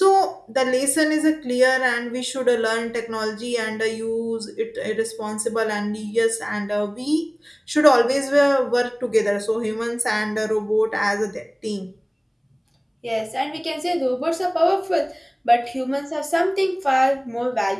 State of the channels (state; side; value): identical; both; correlation 1.00